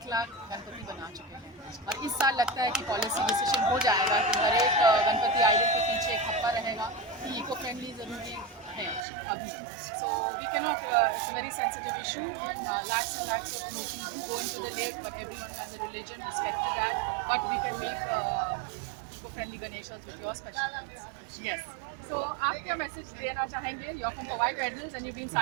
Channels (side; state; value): left; drops out; at 9.1 s